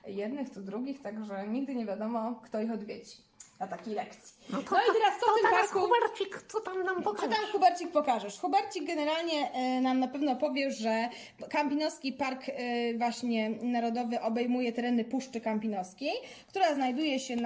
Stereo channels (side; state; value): both; identical; correlation 1.00